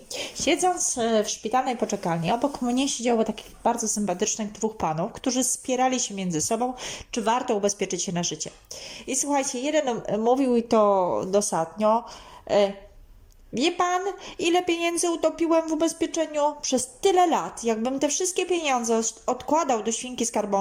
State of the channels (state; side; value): identical; both; correlation 1.00